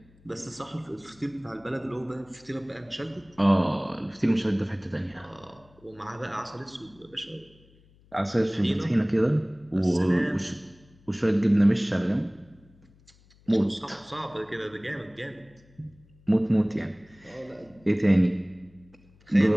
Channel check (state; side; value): noise; left; hum, 29 dB below the sound